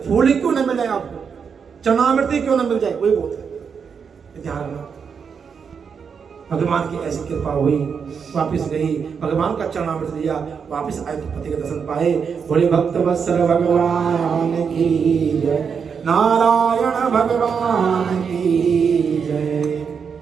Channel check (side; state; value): left; quieter; 6.4 dB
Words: फूल ही क्यों न मिले आपको, चरणामृत क्यों न मिल जाए, वही बोलते हैं। ध्यान रखना, भगवान की ऐसी कृपा हुई, वापिस गई, भगवान का चरणामृत दिया, वापिस आए तो पति के दर्शन पाए। बोले भक्त वत्सल भगवान की जय, नारायण भगवान की जय।